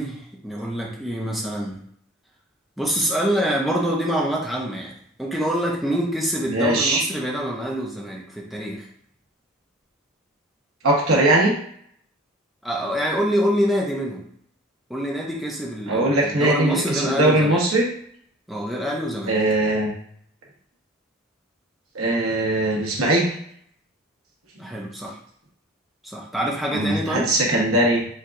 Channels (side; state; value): both; normal; correlation 0.43